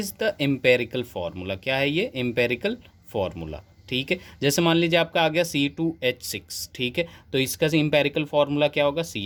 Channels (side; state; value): both; identical; correlation 1.00